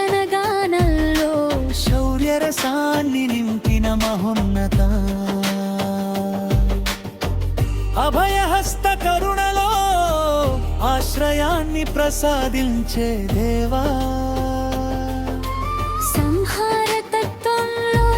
గానంలో శౌర్య రసాన్ని నింపిన మహోన్నత, అభయహస్త కరుణలో ఆశ్రయాన్ని ప్రసాదించే దేవా, సంహార తత్వంలో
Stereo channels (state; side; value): identical; both; correlation 1.00